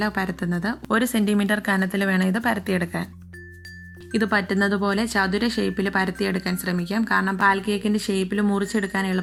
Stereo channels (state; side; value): identical; both; correlation 1.00